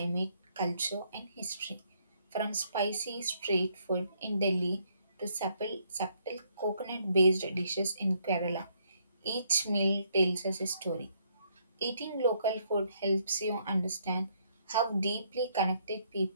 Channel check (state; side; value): inverted; both; correlation -0.70